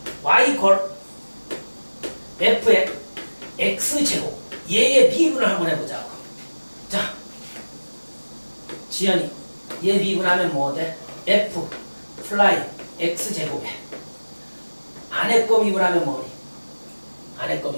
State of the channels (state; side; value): inverted; both; correlation -1.00